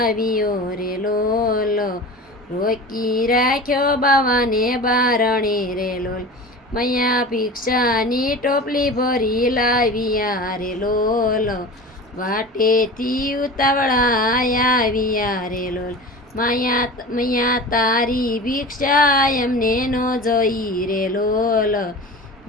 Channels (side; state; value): both; normal; correlation 0.34